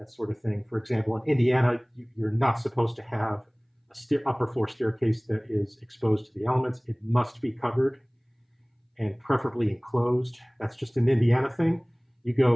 sort of thing. For example, in Indiana, you're not supposed to have a upper floor staircase that is exposed to the elements. It must be covered and preferably enclosed. That's just an Indiana thing. You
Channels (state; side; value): identical; both; correlation 1.00